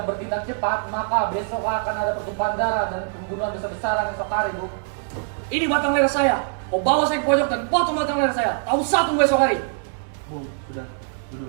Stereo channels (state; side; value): silent; left; digital silence